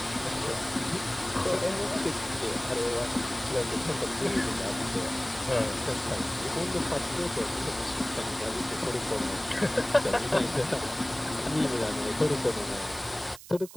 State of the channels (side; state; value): right; noise; hiss, 16 dB below the sound